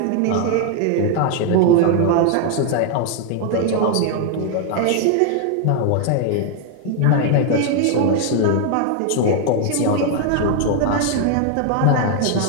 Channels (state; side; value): different; both; correlation 0.00